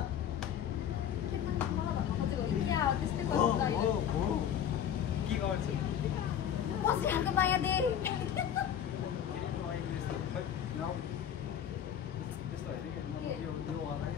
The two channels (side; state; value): right; quieter; 9.3 dB